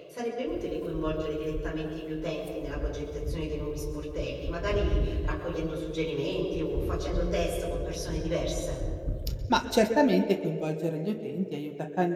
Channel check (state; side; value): identical; both; correlation 1.00